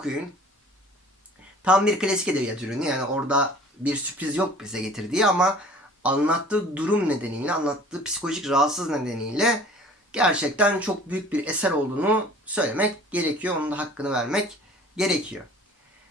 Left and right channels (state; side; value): normal; both; correlation 0.48